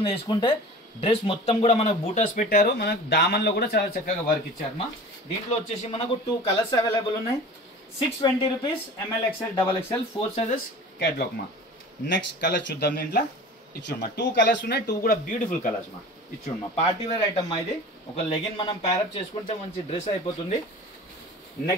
వేసుకుంటే. డ్రెస్ మొత్తం కూడా మనకు బూటాస్ పెట్టారు. మనకు దామన్ లో కూడా చాలా చక్కగా వర్క్ ఇచ్చారమ్మా. దీంట్లో వచ్చేసి మనకు 2 కలర్స్ అవైలబుల్ ఉన్నాయి. 620 rupees M L XL double XL 4 sizes catalogue మా. నెక్స్ట్ కలర్ చూద్దాం. దీంట్లో ఇచ్చుడమ్మా 2 కలర్స్ ఉన్నాయి. 2 కూడా బ్యూటిఫుల్ కలర్స్ మా. ఇచ్చుడమ్మా, పార్టీ వేర్ ఐటమ్ మా. ఇది ఒక లెగిన్ మనం ప్యారప్ చేసుకుంటే మంచి డ్రెస్ అయిపోతుంది.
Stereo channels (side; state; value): both; normal; correlation 0.39